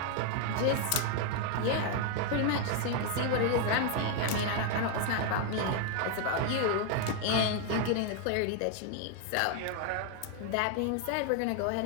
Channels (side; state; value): both; different; correlation 0.01